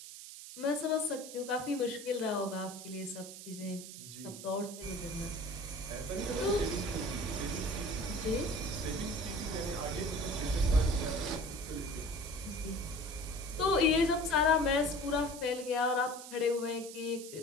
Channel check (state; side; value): noise; right; hiss, 12 dB below the sound